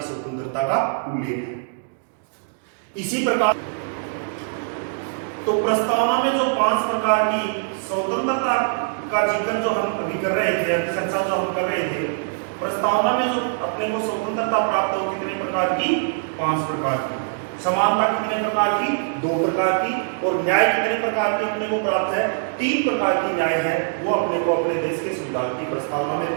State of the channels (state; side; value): silent; left; digital silence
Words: स्वतंत्रता का उल्लेख है। इसी प्रकार तो प्रस्तावना में जो 5 प्रकार की स्वतंत्रता का जिक्र जो हम अभी कर रहे थे, चर्चा जो हम कर रहे थे, प्रस्तावना में जो अपने को स्वतंत्रता प्राप्त हो कितने प्रकार की? 5 प्रकार की। समानता कितने प्रकार की? 2 प्रकार की। और न्याय कितने प्रकार की अपने को प्राप्त है? 3 प्रकार की न्याय है, वो अपने को अपने देश के संविधान की प्रस्तावना